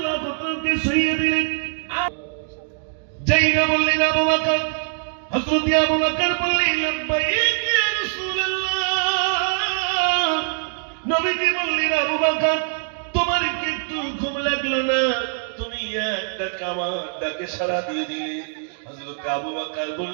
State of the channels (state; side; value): silent; left; digital silence